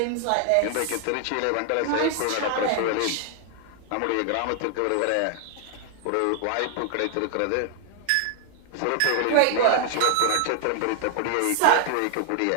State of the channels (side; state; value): both; different; correlation 0.00